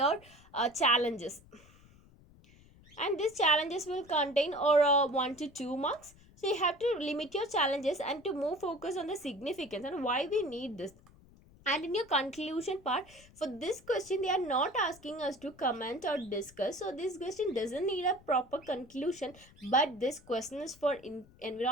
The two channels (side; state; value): left; noise; rumble, 25 dB below the sound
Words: challenges, and these challenges will contain or 1 to 2 marks. So you have to limit your challenges and to move focus on the significance and why we need this. And in your conclusion part, for this question they are not asking us to comment or discuss, so this question doesn't need a proper conclusion. But this question is for